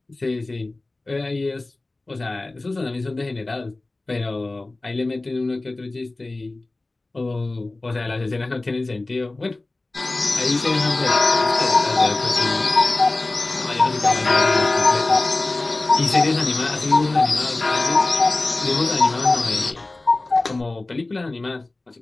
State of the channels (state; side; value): quieter; right; 3.0 dB